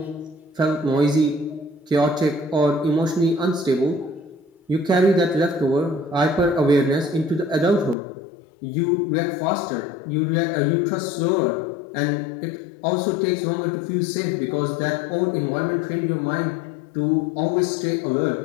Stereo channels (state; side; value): drops out; right; at 8.0 s